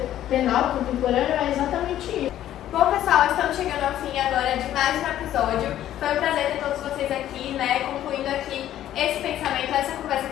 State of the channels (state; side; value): quieter; right; 12.2 dB